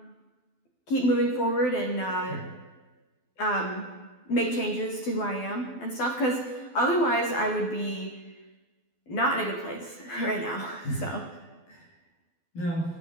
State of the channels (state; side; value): late; right; 12 ms